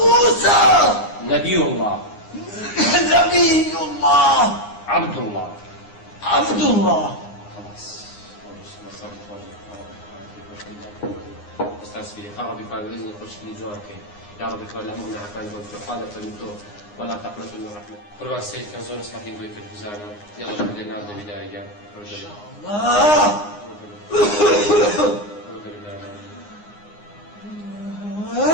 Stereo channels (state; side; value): late; right; 9.7 ms